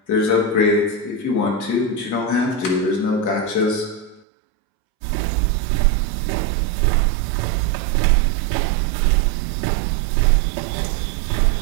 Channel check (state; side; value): drops out; left; at 4.2 s